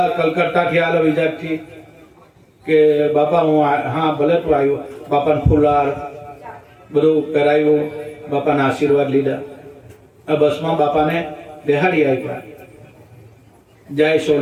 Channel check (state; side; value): identical; both; correlation 1.00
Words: કલકત્તાથી આલો, વિજાગથી કે બાપા હું હા ભલે તું આવ્યો. બાપાને ફુલાર બધું કરાવ્યું, બાપાના આશીર્વાદ લીધા. આ બસમાં બાપાને બેહાડી આવ્યા. જાય